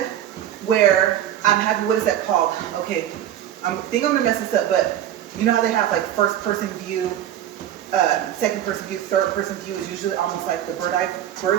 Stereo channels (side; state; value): left; quieter; 11.3 dB